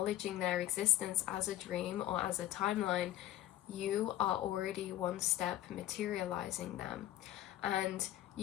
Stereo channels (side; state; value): right; quieter; 13.3 dB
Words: their existence as a dream or as a timeline, you are already one step materializing them. And